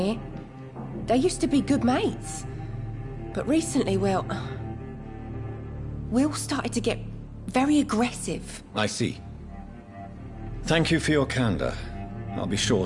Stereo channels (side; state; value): both; identical; correlation 1.00